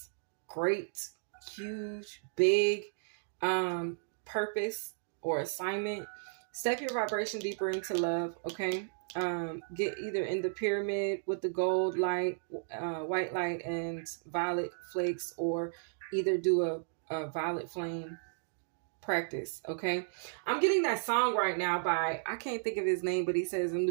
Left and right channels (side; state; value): left; silent; digital silence